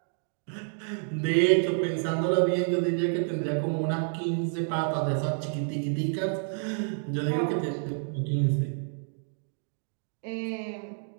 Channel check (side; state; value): left; silent; 59 dB below the other